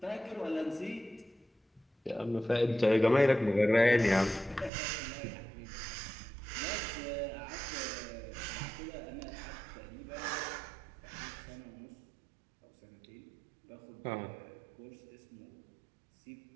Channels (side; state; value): left; drops out; at 4.7 s